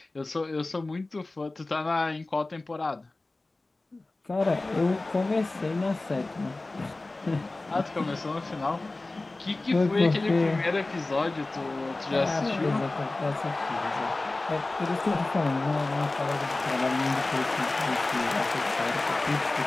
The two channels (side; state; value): right; quieter; 3.1 dB